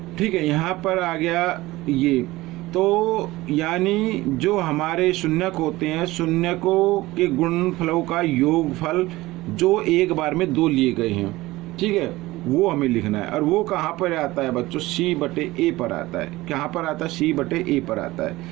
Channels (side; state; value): left; quieter; 18.9 dB